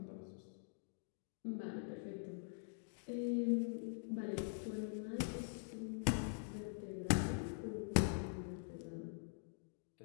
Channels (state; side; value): silent; right; digital silence